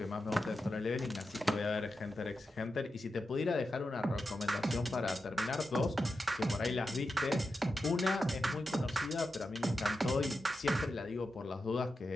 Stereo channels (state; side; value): normal; both; correlation 0.90